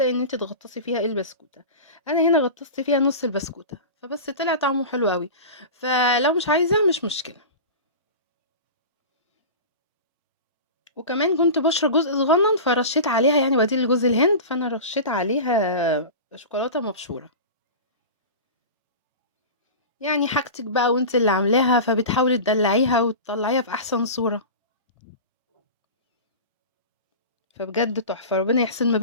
إن أنتِ تغطّسي فيها البسكوتة. أنا هنا غطّست فيها نُص البسكوتة، فبس طلع طعمه حلو أوي. فلو مش عايزة مش مشكلة. وكمان كنت باشرى جزء صغنّن فرشّيت عليها يعني بديل لجوز الهند، فأنا رشّيت عليها شوكولاتة مبشورة. يعني حاجتِك بقى وأنتِ اللي عاملاها، فبتحاولي تدلّعيها وتطلّعيها في أحسن صورة. فبجد تحفة، ربنا يحسن ما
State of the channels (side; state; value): both; inverted; correlation -0.30